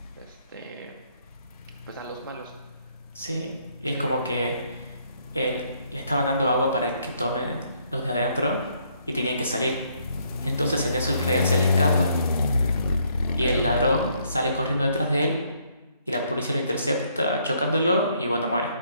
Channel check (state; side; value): inverted; both; correlation -0.70